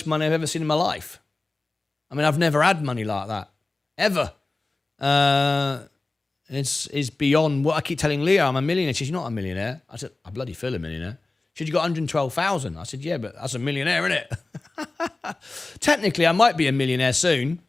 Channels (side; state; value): right; quieter; 3.3 dB